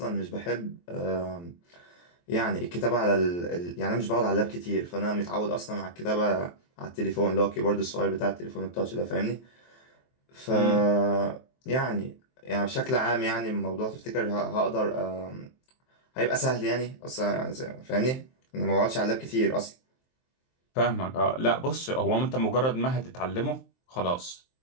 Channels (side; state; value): right; late; 23 ms